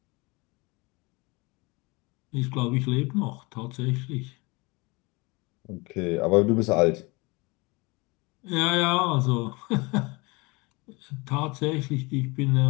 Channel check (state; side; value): quieter; right; 26.0 dB